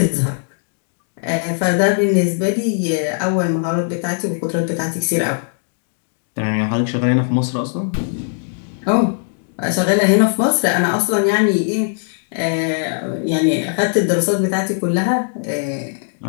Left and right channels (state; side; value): silent; right; 64 dB below the other